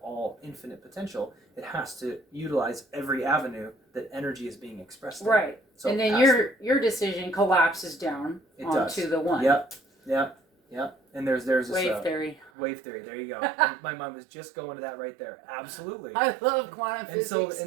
infinite potential, it has to utilize every avenue that energy is being expressed in. Right. So and then your decision collapses down onto the one. Yep. And there's this wave theory. Wave theory. There you go. My mind was just going to that right there. Absolutely. I love quantum physics.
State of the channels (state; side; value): drops out; left; at 12.5 s